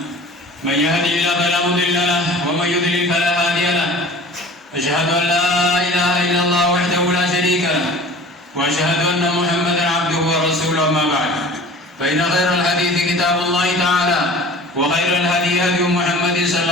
من يهده الله فلا مضل له ومن يضلل فلا هادي له أشهد أن لا إله إلا الله وحده لا شريك له وأشهد أن محمدا عبده ورسوله أما بعد فإن خير الحديث كتاب الله تعالى وخير الهدي هدي محمد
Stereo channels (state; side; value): normal; both; correlation 0.42